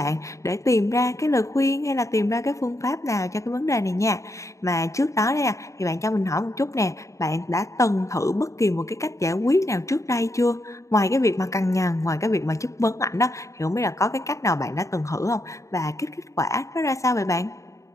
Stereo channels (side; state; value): right; late; 0.15 ms